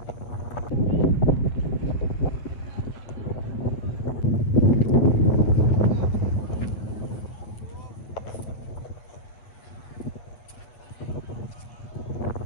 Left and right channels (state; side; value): late; right; 8.7 ms